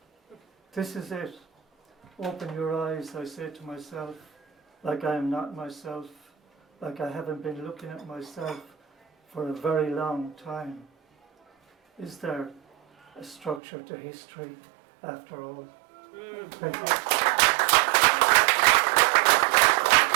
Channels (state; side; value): drops out; left; at 13.6 s